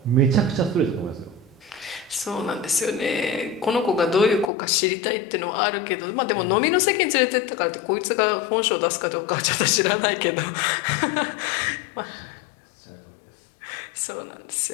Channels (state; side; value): drops out; right; at 4.5 s